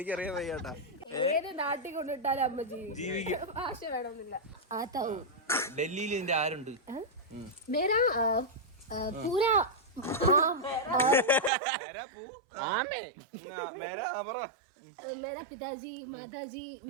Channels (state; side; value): drops out; left; at 11.5 s